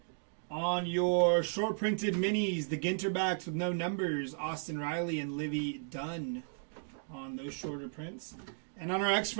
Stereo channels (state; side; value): silent; left; digital silence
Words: On your short printed minis, the Ginterbacks with no numbers, Austin Riley and Livy Dunn on those shorter prints. And on our